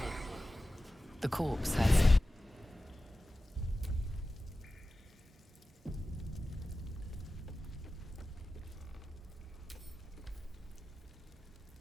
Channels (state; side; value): normal; both; correlation 0.95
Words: The corpse has.